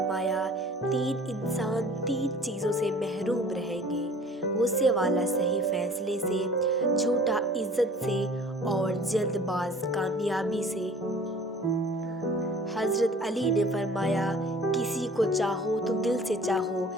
تین انسان تین چیزوں سے محروم رہیں گے: غصے والا صحیح فیصلے سے، جھوٹا عزت سے، اور جلد باز کامیابی سے۔ حضرت علی نے فرمایا، کسی کو چاہو تو دل سے چاہو،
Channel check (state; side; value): normal; both; correlation 0.48